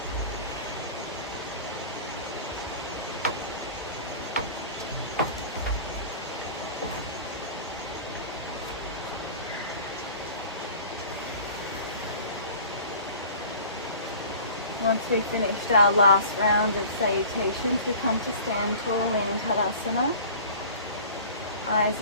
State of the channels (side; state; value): both; inverted; correlation -0.43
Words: Once we've finished our last round of salutations, we come to stand tall in Tadasana. Eyes